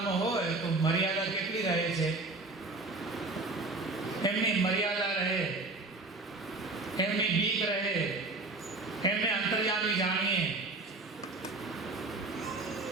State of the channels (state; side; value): quieter; left; 3.3 dB